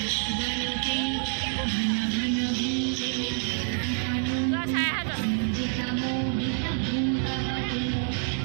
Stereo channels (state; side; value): silent; left; 60 dB below the other